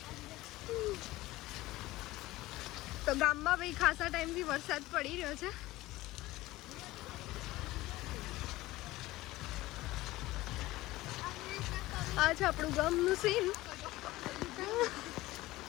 તો ગામમાં ભાઈ ખાસા ટાઈમથી વરસાદ પડી રહ્યો છે. આ છે આપણું ગામનું સીન.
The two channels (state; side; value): quieter; right; 18.0 dB